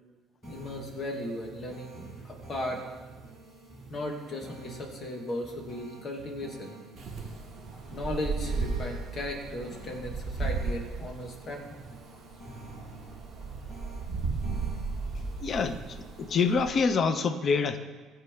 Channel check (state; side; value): normal; both; correlation 0.65